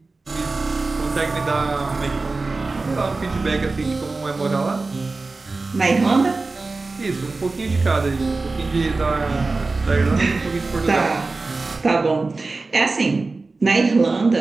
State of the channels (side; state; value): left; quieter; 3.6 dB